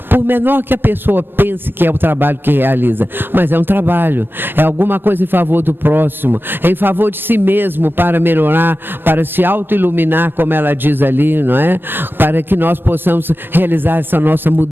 por menor que a pessoa pense que é o trabalho que realiza, mas é um trabalho, é alguma coisa em favor do próximo, em favor de si mesmo, para melhorar, para se auto-iluminar, como ela diz ali, não é? Para que nós possamos realizar essa nossa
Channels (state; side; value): late; left; 0.10 ms